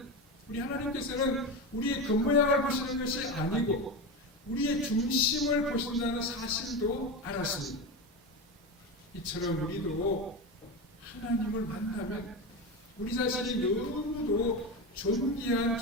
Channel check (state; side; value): normal; both; correlation 0.19